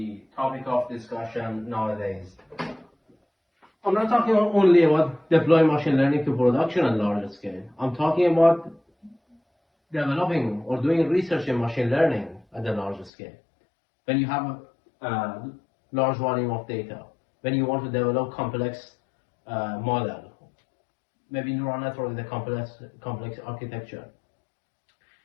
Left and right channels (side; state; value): right; drops out; at 13.1 s